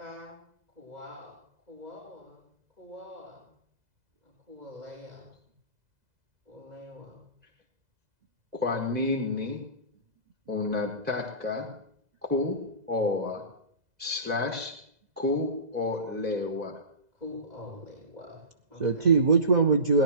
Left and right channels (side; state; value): left; late; 2.0 ms